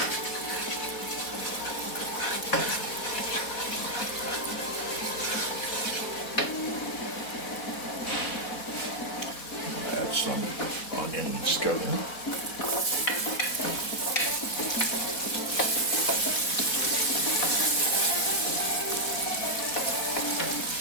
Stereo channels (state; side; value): late; right; 4.1 ms